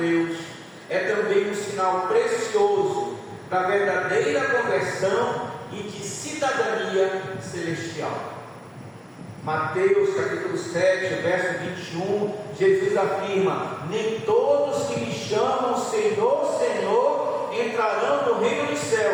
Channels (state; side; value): identical; both; correlation 1.00